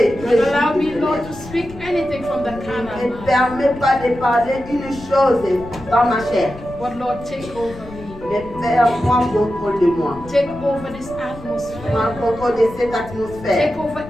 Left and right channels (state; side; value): noise; left; rumble, 16 dB below the sound